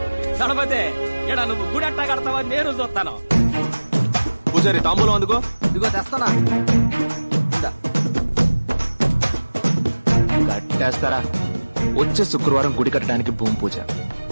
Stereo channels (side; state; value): both; inverted; correlation -1.00